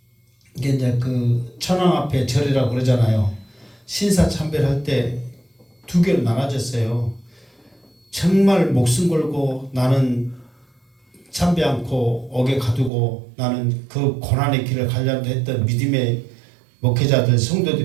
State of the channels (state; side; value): drops out; left; at 12.9 s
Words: 이게 이제 그 천황 앞에 절이라고 그러잖아요. 신사참배를 할 때 두 개로 나눠졌어요. 정말 목숨 걸고 나는 참배 않고 옥에 가두고 나는 그 고난의 길을 가려고 했던 믿음의 목회자들